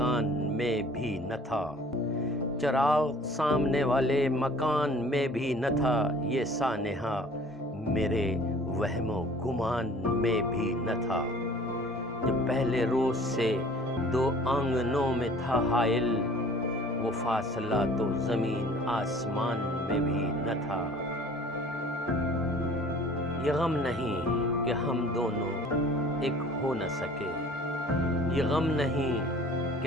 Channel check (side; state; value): both; normal; correlation 0.50